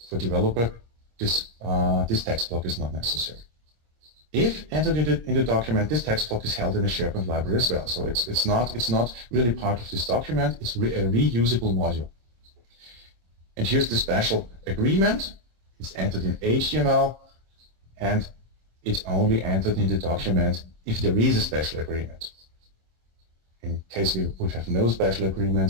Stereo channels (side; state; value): left; late; 26 ms